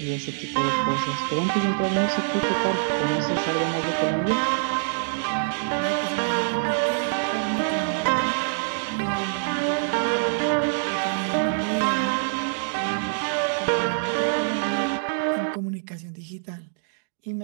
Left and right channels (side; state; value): left; silent; digital silence